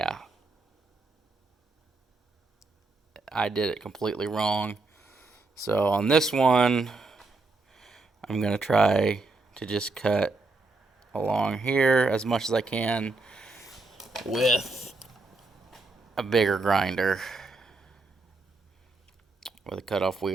I did it completely wrong. So on this one, I'm gonna try to just cut along here as much as I can with a bigger grinder with a cutoff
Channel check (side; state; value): left; quieter; 3.4 dB